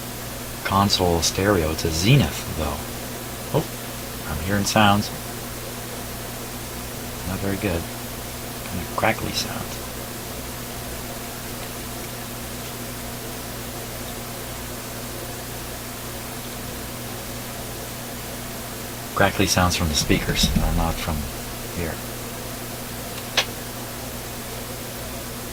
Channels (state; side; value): identical; both; correlation 1.00